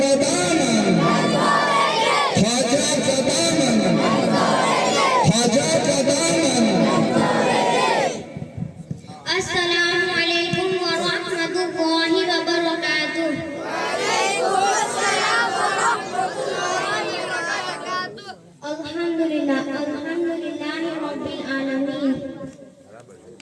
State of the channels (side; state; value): both; identical; correlation 1.00